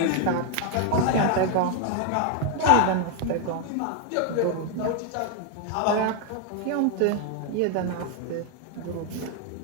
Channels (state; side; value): different; both; correlation 0.00